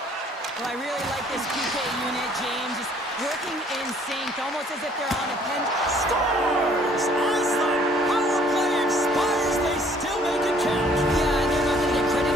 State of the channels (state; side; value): normal; both; correlation 0.59